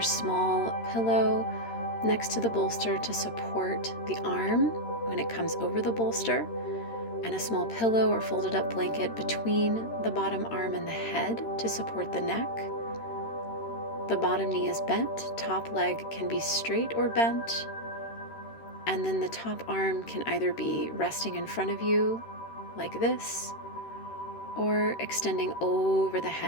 small pillow next to the bolster to support the arm when it comes over the bolster, and a small pillow or folded up blanket between the bottom arm and the head to support the neck. The bottom knee is bent, top leg can be straight or bent, and then the top arm can either be resting in front of you like this, or extending over the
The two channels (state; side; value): late; right; 13 ms